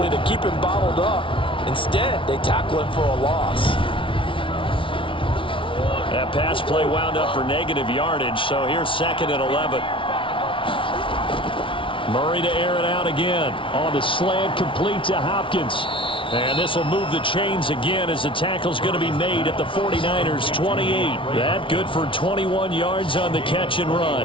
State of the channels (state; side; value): late; right; 0.25 ms